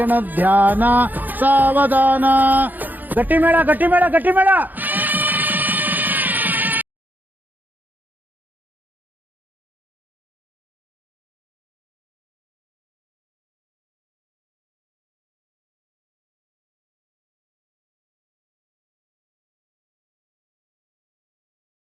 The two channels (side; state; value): left; late; 0.085 ms